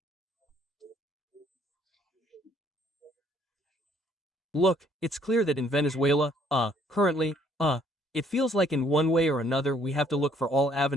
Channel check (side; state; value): both; normal; correlation 0.64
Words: Look, it's clear that in Venezuela, currently, it feels like in one way or another we have to look for all